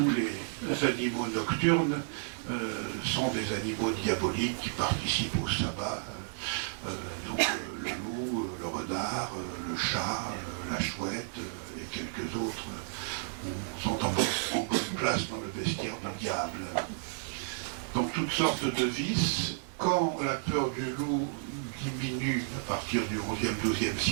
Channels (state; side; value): silent; left; 56 dB below the other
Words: les animaux nocturnes sont des animaux diaboliques qui participent au sabbat, donc le loup, le renard, le chat, la chouette et quelques autres sont en bonne place dans le bestiaire du diable. Donc toutes sortes de vices. Quand la peur du loup diminue à partir du XIe, XIIe